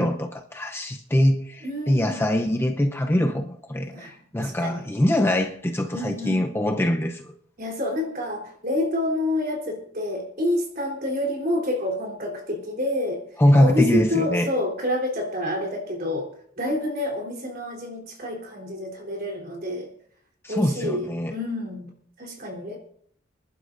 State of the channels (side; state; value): both; normal; correlation 0.68